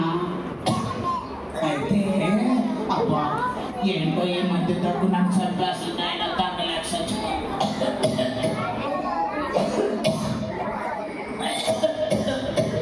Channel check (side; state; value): both; identical; correlation 1.00